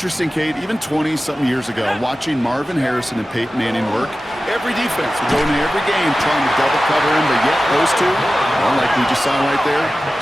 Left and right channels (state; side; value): normal; both; correlation 0.95